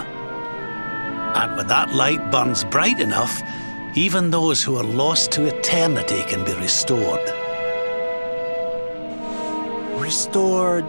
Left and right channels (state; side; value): inverted; both; correlation -1.00